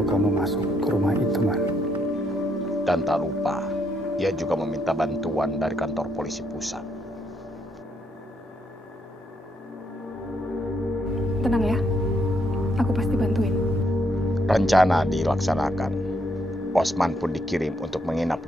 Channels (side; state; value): both; normal; correlation 0.74